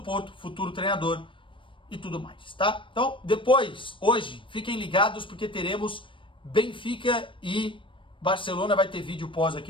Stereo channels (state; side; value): late; right; 0.25 ms